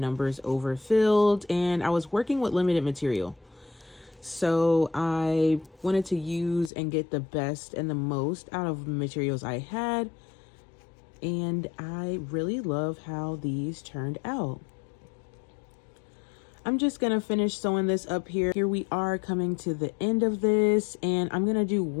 overfilled, and I was working with limited material. So I wanted to use and get the best and the most out of the materials I had. And I really love how these turned out. I'm just gonna finish sewing this up here. Here we are coming to the end of this, and I'm gonna do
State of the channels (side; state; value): right; drops out; at 6.7 s